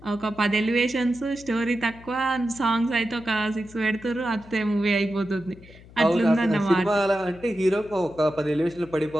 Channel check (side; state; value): left; noise; hum, 21 dB below the sound